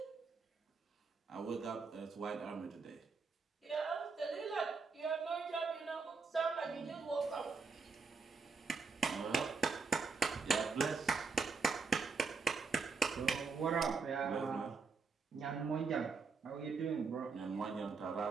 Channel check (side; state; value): left; quieter; 4.8 dB